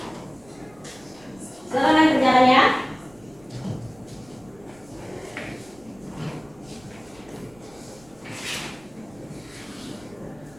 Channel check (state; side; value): noise; right; rumble, 26 dB below the sound